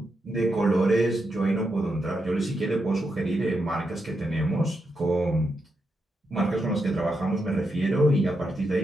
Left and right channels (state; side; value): normal; both; correlation 0.84